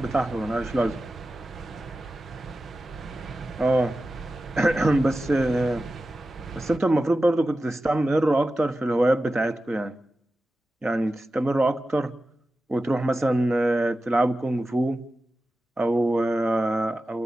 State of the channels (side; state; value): both; normal; correlation 0.94